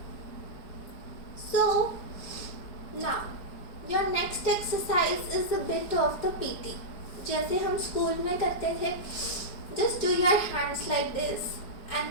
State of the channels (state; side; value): late; right; 4.8 ms